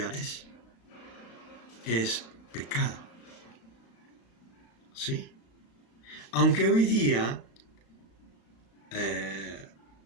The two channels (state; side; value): late; right; 35 ms